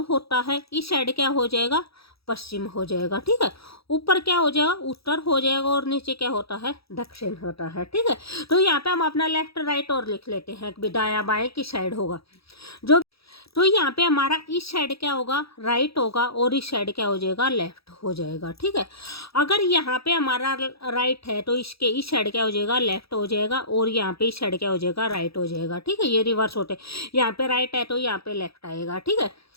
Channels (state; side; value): late; right; 0.77 ms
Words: होता है, इस साइड क्या हो जाएगा, पश्चिम हो जाएगा, ठीक है। ऊपर क्या हो जाएगा, उत्तर हो जाएगा, और नीचे क्या होता है, दक्षिण होता है, ठीक है। तो यहाँ पे हम अपना लेफ्ट राइट और लिख लेते हैं कि दाया बाएं की साइड होगा जो। तो यहाँ पे हमारा इस साइड क्या होगा, राइट होगा, और इस साइड क्या हो जाएगा, लेफ्ट हो जाएगा, ठीक है। अगर यहाँ पे हमारा राइट है तो इसके इस साइड क्या हो जाएगा, लेफ्ट हो जाएगा, और यहाँ पे इस साइड क्या हो जाएगा, राइट हो जाएगा, ठीक है। ये रिवर्स होते, यहाँ पे राइट है तो यहाँ पे लेफ्ट आएगा, ठीक है।